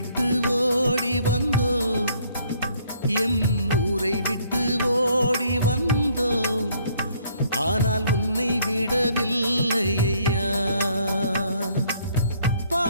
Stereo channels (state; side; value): inverted; both; correlation -0.64